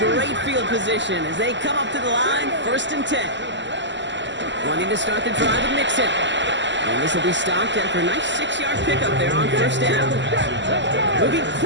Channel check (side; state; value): left; late; 0.53 ms